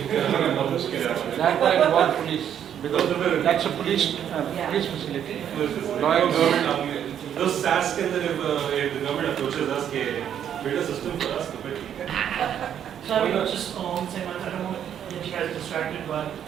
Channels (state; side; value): quieter; left; 9.4 dB